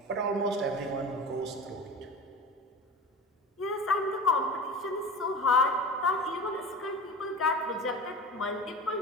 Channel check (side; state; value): both; normal; correlation 0.33